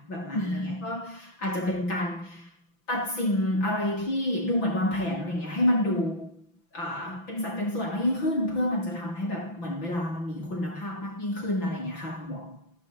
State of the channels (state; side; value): late; right; 5.9 ms